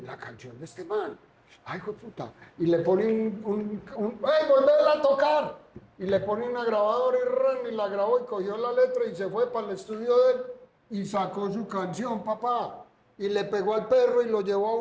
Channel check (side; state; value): both; identical; correlation 1.00